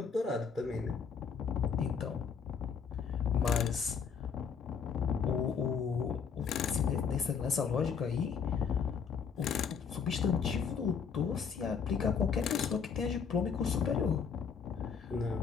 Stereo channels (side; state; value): right; quieter; 6.4 dB